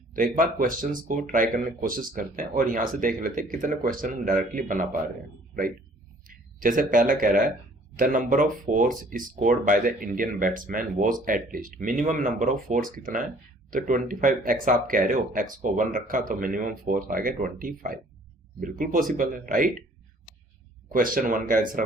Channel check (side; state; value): both; normal; correlation 0.56